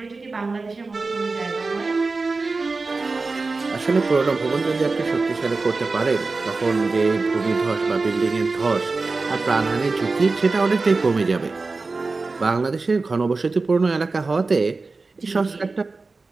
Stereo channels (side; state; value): left; quieter; 3.8 dB